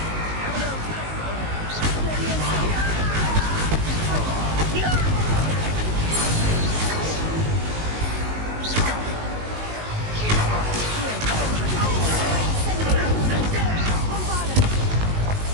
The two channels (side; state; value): left; late; 19 ms